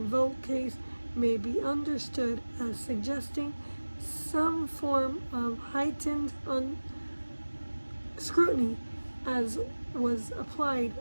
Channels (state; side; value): inverted; both; correlation -1.00